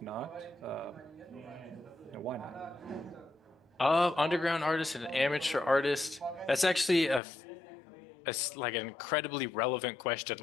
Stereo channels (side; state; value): right; drops out; at 7.2 s